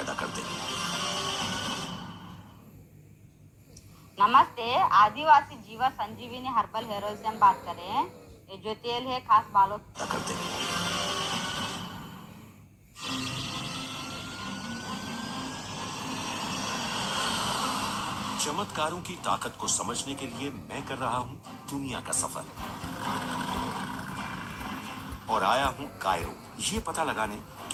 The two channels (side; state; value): both; identical; correlation 1.00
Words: कर दे। नमस्ते। आदिवासी जीवा संजीवनी हर्बल हेयर ऑयल से हम बात कर रहे हैं। ये जो तेल है खास बालों पैदा कर दे। चमत्कारों की ताकत को समझने के लिए मैं कर रहा हूं दुनिया का सफर, और आया हूं कायरो, ये पता लगाने